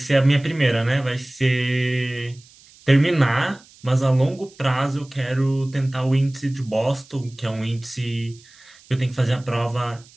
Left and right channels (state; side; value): noise; right; hiss, 26 dB below the sound